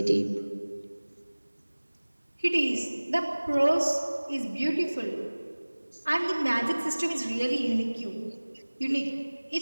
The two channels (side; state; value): both; inverted; correlation -1.00